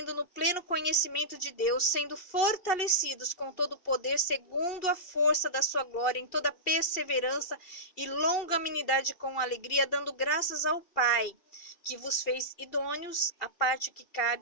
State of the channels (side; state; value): right; late; 2.7 ms